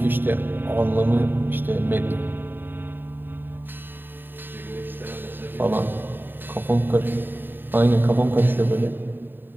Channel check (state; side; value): late; left; 0.094 ms